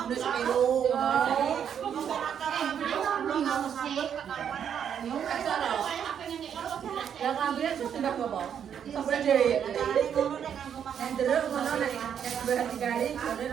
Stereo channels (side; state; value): left; quieter; 8.5 dB